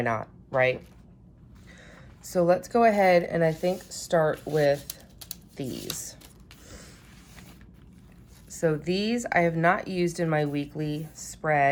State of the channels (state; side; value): identical; both; correlation 1.00